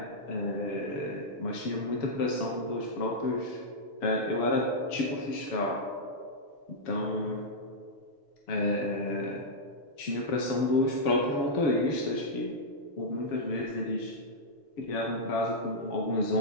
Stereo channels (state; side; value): late; right; 7.1 ms